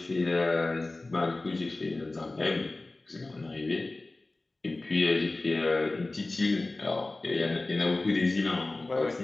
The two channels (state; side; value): quieter; right; 3.1 dB